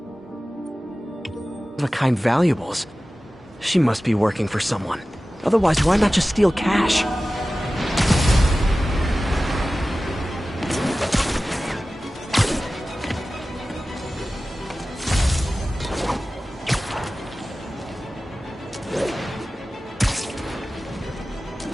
of-a-kind valuables. She must be working for someone. Otherwise, why not just steal cash?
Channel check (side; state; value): both; normal; correlation 0.96